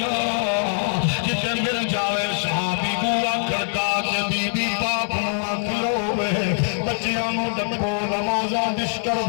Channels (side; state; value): right; silent; 58 dB below the other